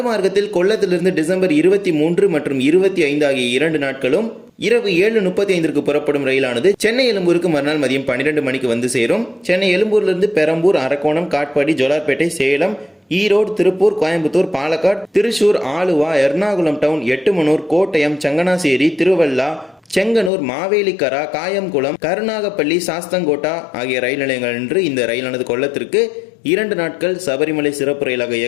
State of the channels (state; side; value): drops out; right; at 20.3 s